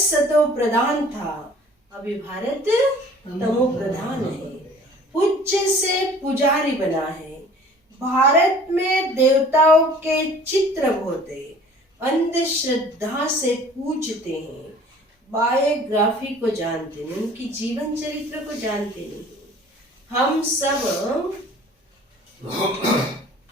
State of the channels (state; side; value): normal; both; correlation 0.49